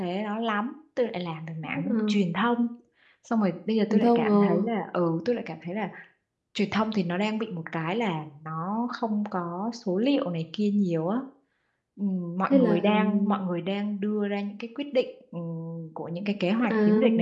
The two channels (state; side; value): identical; both; correlation 1.00